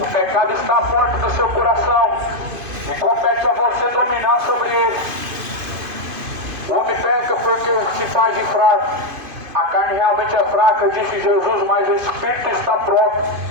o pecado está à porta do seu coração e compete a você dominar sobre ele. O homem peca porque se faz de fraco. A carne realmente é fraca, disse Jesus, mas o espírito está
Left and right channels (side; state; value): left; late; 2.5 ms